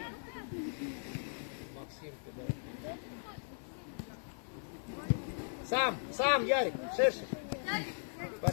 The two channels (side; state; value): right; silent; 52 dB below the other